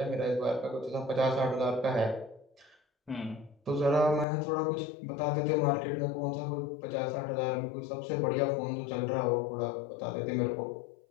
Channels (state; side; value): drops out; right; at 4.2 s